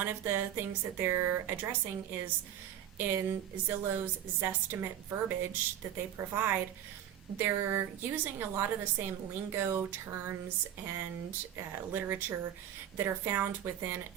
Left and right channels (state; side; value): quieter; left; 10.5 dB